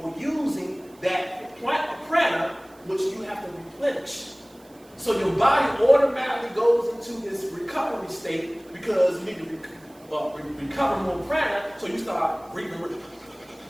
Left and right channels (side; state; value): right; noise; hiss, 28 dB below the sound